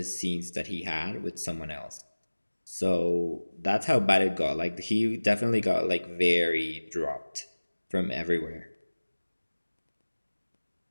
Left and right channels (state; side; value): inverted; both; correlation -1.00